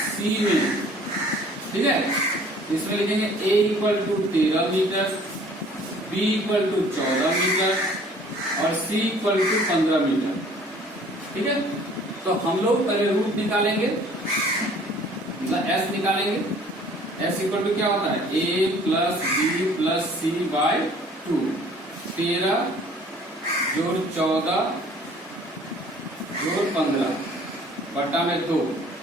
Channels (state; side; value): normal; both; correlation 0.53